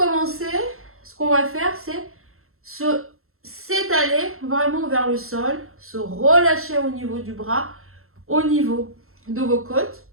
ce qu'on va faire, c'est s'étaler vraiment vers le sol, se relâcher au niveau du bras, au niveau de vos côtes,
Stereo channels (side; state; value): left; late; 0.62 ms